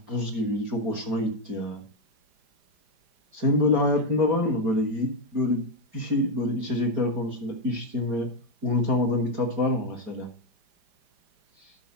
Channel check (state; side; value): late; left; 4.9 ms